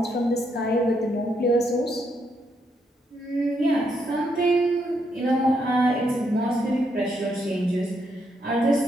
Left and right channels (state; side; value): normal; both; correlation 0.77